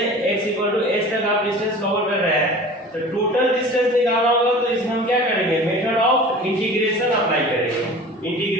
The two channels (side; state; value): both; normal; correlation 0.40